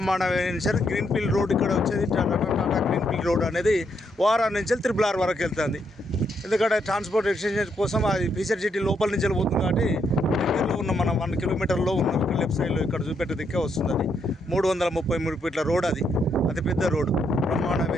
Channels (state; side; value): normal; both; correlation 0.76